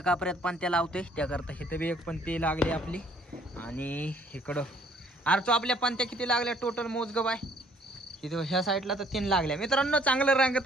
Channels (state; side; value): normal; both; correlation 0.61